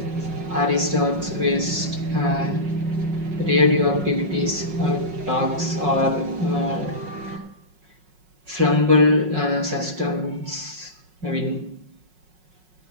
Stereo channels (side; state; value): left; late; 5.4 ms